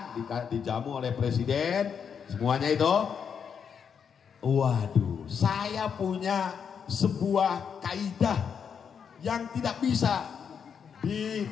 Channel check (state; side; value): quieter; right; 7.1 dB